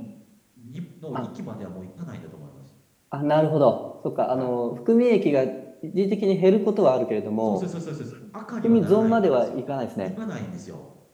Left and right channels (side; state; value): both; identical; correlation 1.00